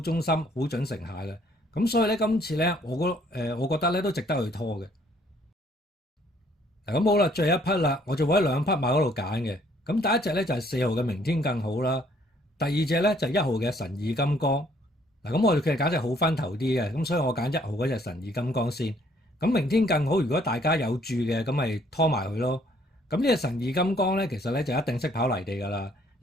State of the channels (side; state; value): both; normal; correlation 0.64